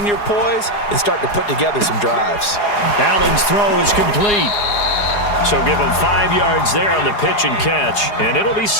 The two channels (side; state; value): right; late; 4.8 ms